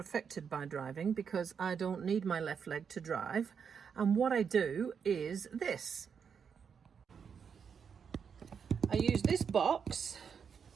by driving because I don't need my left leg to drive. And what I do is this. I use this box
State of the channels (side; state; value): left; quieter; 6.8 dB